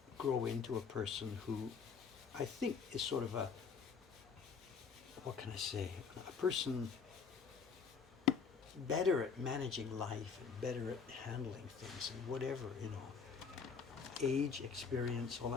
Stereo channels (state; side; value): quieter; right; 5.8 dB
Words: grow into a person who I think is sort of a, what can I say, a person better at managing life and better at handling things and whatever, age, experience, all